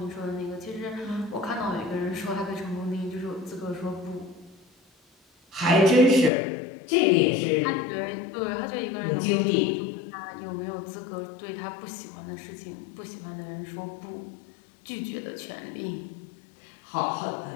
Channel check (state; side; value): drops out; right; at 6.3 s